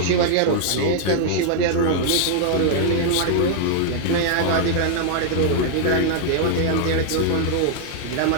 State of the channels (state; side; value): different; both; correlation 0.00